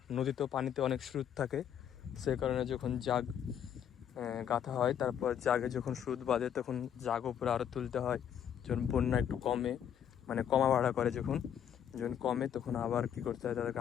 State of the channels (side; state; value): right; quieter; 9.1 dB